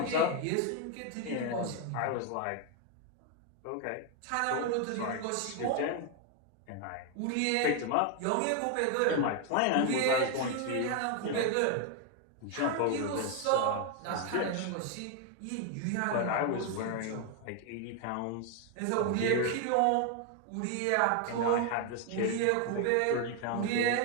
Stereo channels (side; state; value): both; different; correlation 0.01